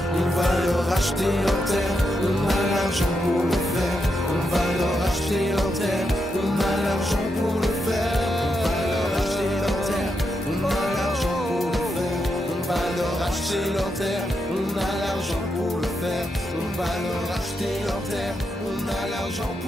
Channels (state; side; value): normal; both; correlation 0.83